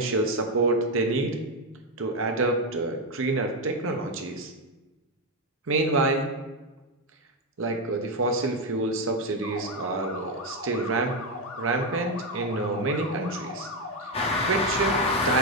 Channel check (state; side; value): normal; both; correlation 0.06